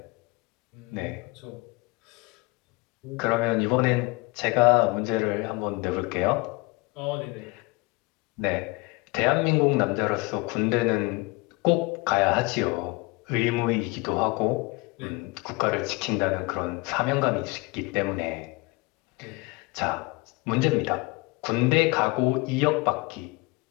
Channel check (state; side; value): quieter; right; 25.1 dB